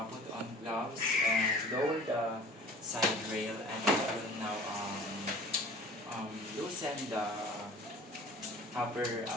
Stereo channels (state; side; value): normal; both; correlation 0.44